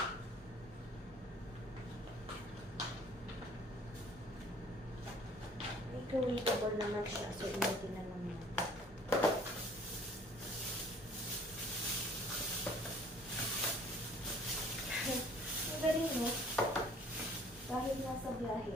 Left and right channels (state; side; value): normal; both; correlation 0.54